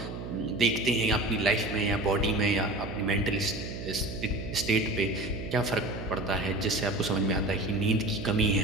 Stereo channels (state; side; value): noise; right; hum, 8 dB below the sound